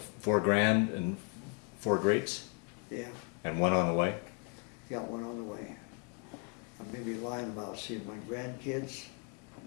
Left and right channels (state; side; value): quieter; right; 36.3 dB